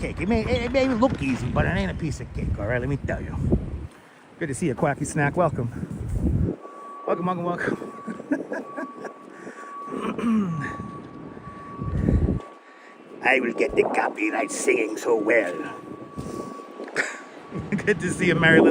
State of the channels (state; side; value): identical; both; correlation 1.00